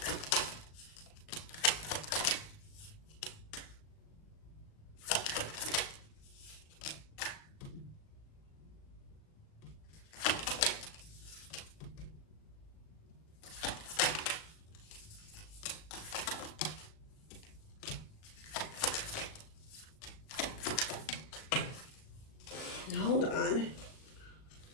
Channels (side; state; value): right; late; 38 ms